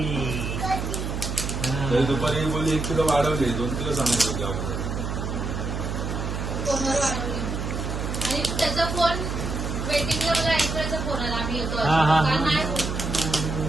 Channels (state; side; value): noise; right; hum, 3 dB below the sound